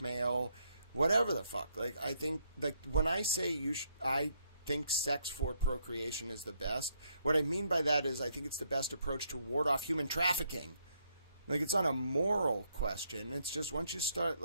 whatever the fuck. Like, I think, like, when I say I think sex for procreation is the best, what I mean by that is I think it's the best approach to ward off human trafficking. Like, it's not a moral question. It's just once you start,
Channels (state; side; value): inverted; both; correlation -0.73